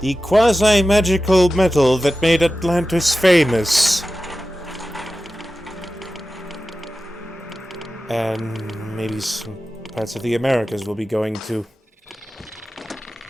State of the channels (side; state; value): both; normal; correlation 0.94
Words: the quasi-magical metal that made Atlantis famous. And maybe some parts of the Americas will be going to.